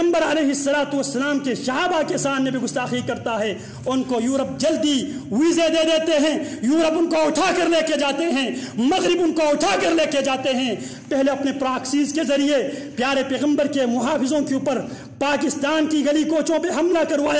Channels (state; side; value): identical; both; correlation 1.00